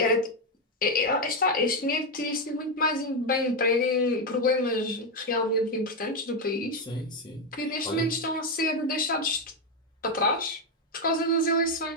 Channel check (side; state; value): both; normal; correlation 0.06